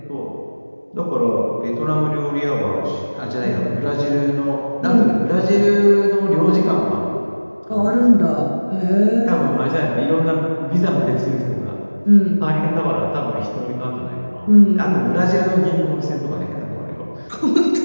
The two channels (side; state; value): both; inverted; correlation -1.00